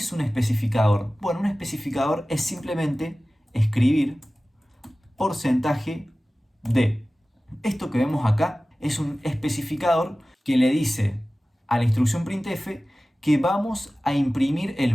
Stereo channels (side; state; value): both; normal; correlation 0.97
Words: un especificador? Bueno, un especificador es simplemente escribir porcentaje de. Esto que vemos acá es un especificador que le dice a la instrucción printf que vamos a imprimir el